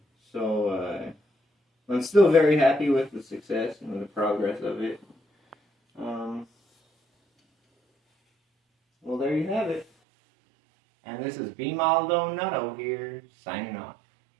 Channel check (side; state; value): left; drops out; at 9.9 s